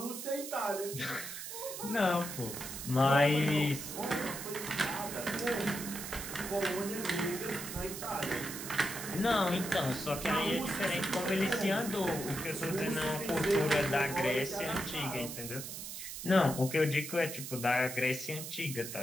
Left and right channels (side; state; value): right; noise; hiss, 8 dB below the sound